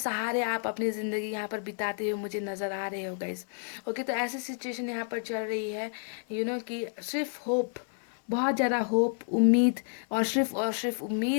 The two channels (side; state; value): right; silent; digital silence